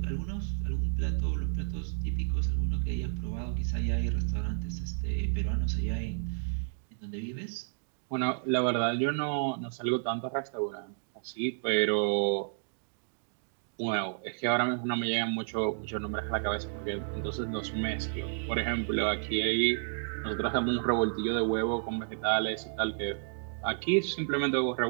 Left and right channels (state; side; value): silent; left; digital silence